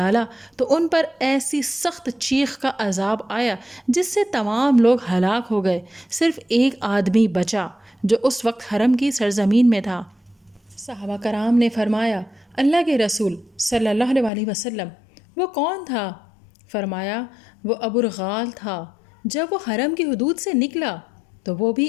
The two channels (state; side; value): drops out; right; at 14.3 s